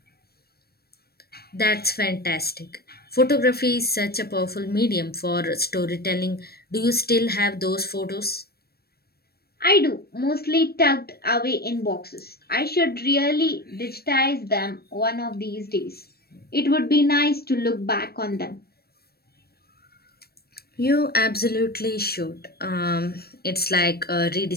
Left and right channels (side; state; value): right; late; 0.46 ms